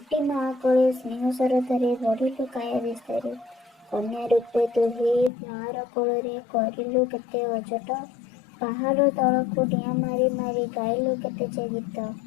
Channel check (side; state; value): right; drops out; at 5.3 s